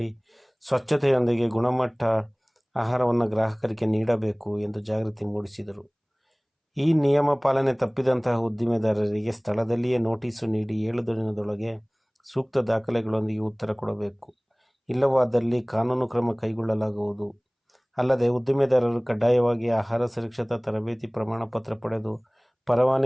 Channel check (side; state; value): both; identical; correlation 1.00